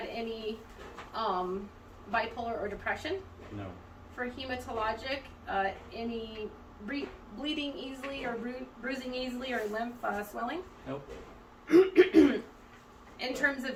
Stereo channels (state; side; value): identical; both; correlation 1.00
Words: any bipolar or depression? No. For hematologic, any bleeding easily or bruising easily or lymph swelling? Nope. In terms